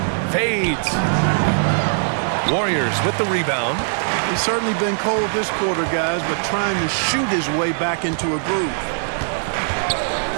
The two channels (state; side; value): silent; left; 65 dB below the other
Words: Fades. Warriors with the rebound. He's certainly been cold this quarter, guys, but trying to shoot his way back into a groove.